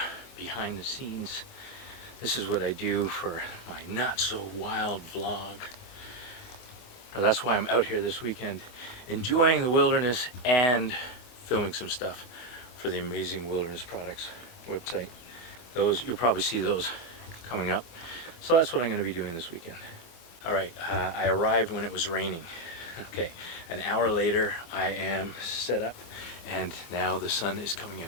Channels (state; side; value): late; right; 24 ms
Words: behind the scenes. This is what I do for my not so wild vlog. That's why I'm out here this weekend, enjoying the wilderness and filming some stuff for the Amazing Wilderness Products website. Those, you'll probably see those coming up. So that's what I'm going to be doing this weekend. All right, I arrived when it was raining. Okay, an hour later I am set up and now the sun is coming